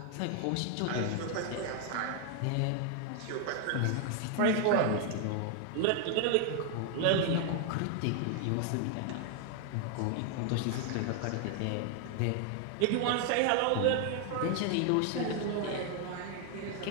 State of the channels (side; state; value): both; different; correlation 0.00